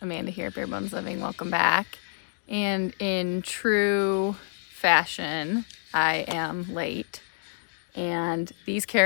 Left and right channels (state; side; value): silent; right; digital silence